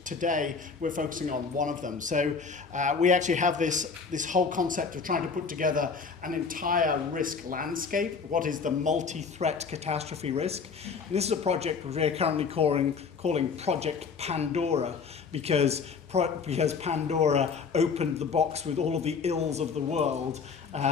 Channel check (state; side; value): quieter; right; 5.5 dB